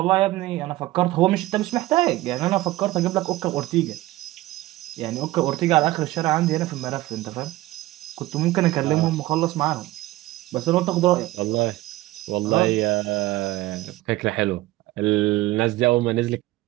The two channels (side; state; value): left; quieter; 17.6 dB